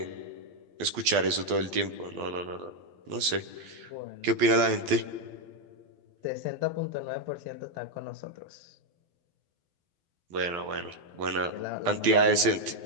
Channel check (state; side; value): late; left; 12 ms